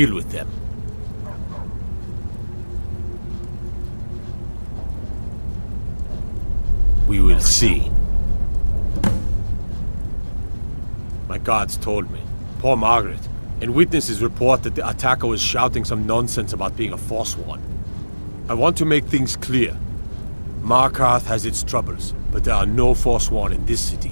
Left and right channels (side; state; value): both; inverted; correlation -1.00